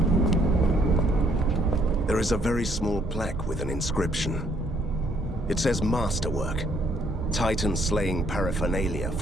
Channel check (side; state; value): both; normal; correlation 0.67